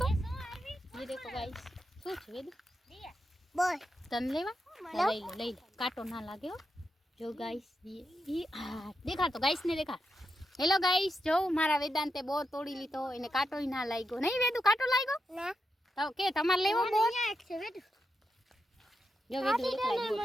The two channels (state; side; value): normal; both; correlation 0.86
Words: ये देखो गाइस શું છે વેદ બોલ તન લેવા લઈ લે કાંટો ના લાગે હો જો ગાઈસ હા દેખા તો ગાઈસ ને દેખા હેલો ગાઈસ જો મારા વેદાંતે બોર તોડી લીધો એને કાંટોય ના લાગ્યો નહીં વેદુ કાંટો લાગ્યો ના તો કે તમારે લેવો બોર એક છે વેદ જો વેદુ